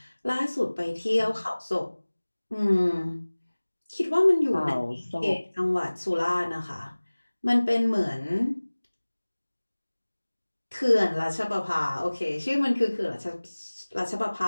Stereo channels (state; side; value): inverted; both; correlation -1.00